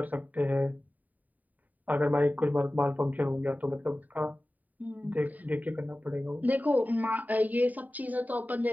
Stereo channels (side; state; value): left; late; 0.078 ms